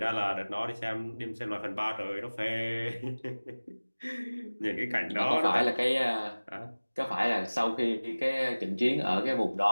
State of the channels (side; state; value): both; inverted; correlation -1.00